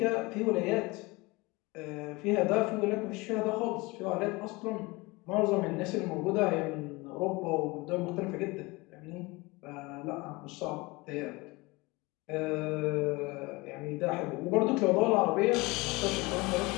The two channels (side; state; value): right; quieter; 23.8 dB